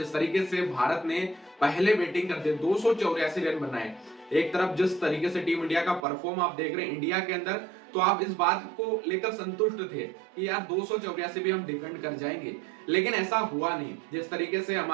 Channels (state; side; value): drops out; left; at 6.1 s